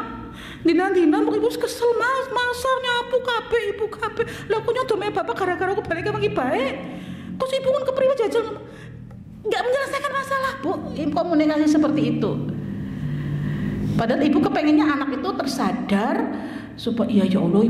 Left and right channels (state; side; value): identical; both; correlation 1.00